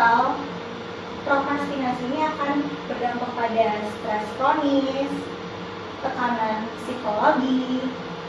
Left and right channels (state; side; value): identical; both; correlation 1.00